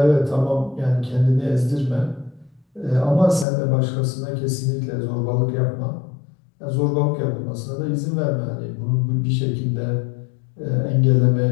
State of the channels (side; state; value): right; drops out; at 3.5 s